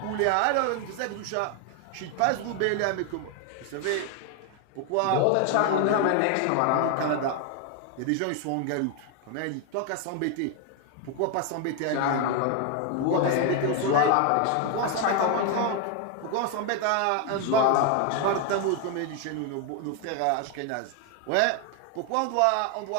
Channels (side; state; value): both; different; correlation 0.01